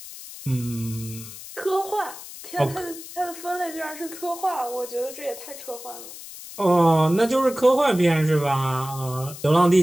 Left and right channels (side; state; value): left; noise; hiss, 14 dB below the sound